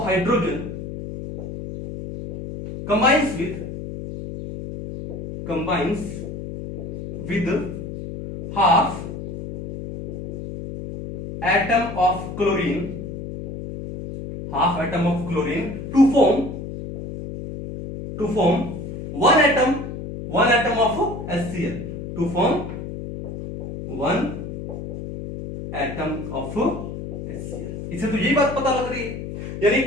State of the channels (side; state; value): left; noise; hum, 8 dB below the sound